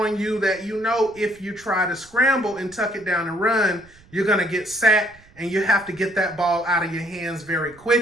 you that if you try to scramble and tuck it down and run, you're going to get sacked and you have to get that ball out of your hands very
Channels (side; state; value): right; noise; rumble, 26 dB below the sound